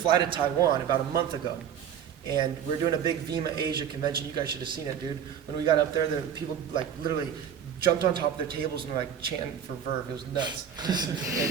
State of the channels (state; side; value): quieter; left; 8.6 dB